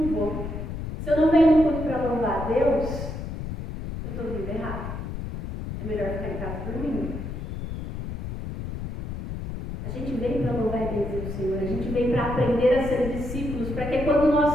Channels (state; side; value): noise; left; rumble, 6 dB below the sound